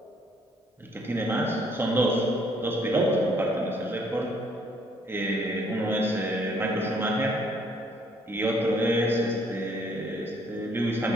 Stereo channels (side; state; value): both; normal; correlation 0.64